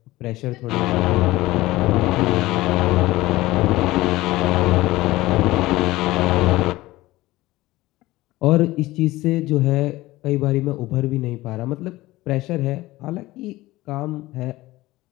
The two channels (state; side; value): quieter; right; 18.3 dB